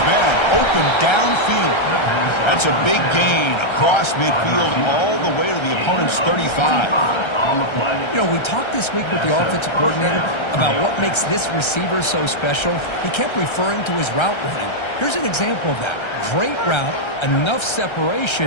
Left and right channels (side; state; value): right; late; 1.3 ms